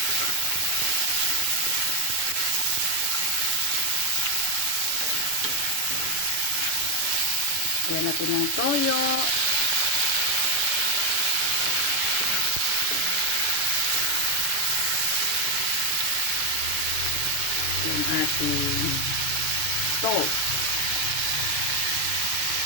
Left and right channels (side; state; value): left; late; 6.6 ms